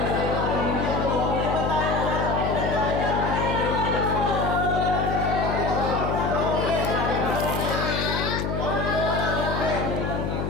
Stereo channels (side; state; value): left; noise; hum, 1 dB below the sound